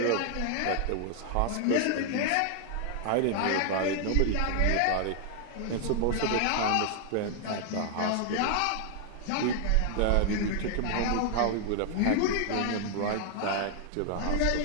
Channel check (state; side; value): different; both; correlation 0.00